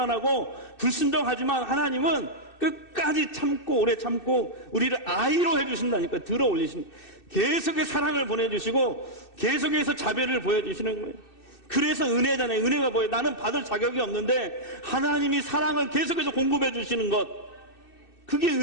불순종하지만 하나님은 끝까지 참고 오래 참고 우리를 아이로 해주신다니까. 들어 올리시는 거예요. 계속해서 사랑을 보내주시고 계속해서 자비를 보여주시는 거예요. 그래서 은혜잖아요. 은혜가 뭐예요? 나는 받을 자격이 없는데 하나님이 사랑을 계속해서 공급해 주시는 것, 그게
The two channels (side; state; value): right; late; 2.6 ms